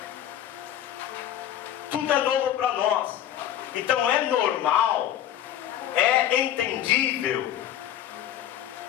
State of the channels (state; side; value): quieter; right; 11.2 dB